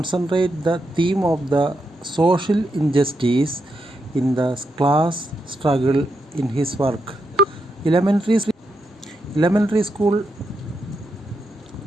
the theme of the social injustice in the class struggle in his work. Elementary school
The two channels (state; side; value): normal; both; correlation 0.83